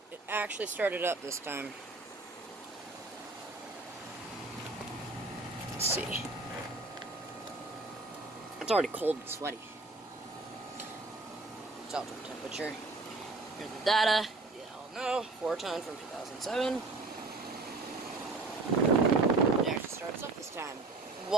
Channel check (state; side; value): quieter; left; 3.5 dB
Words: It actually started up this time. Let's see. It's already cold and sweaty. It's outdoor temperature. Here's the data. You all know, 4-ton from 2007. It actually starts up this time,